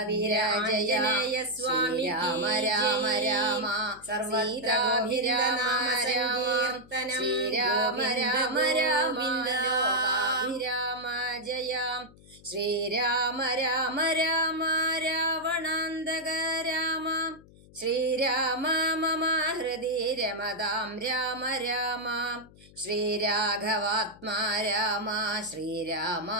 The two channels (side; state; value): left; noise; hum, 24 dB below the sound